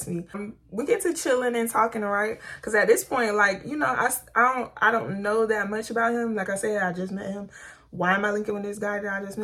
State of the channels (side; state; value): both; identical; correlation 1.00